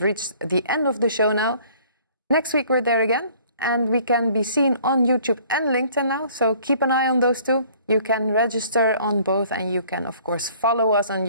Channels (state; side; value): inverted; both; correlation -0.56